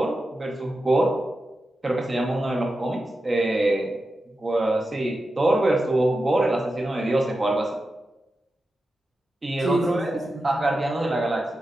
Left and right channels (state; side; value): normal; both; correlation 0.91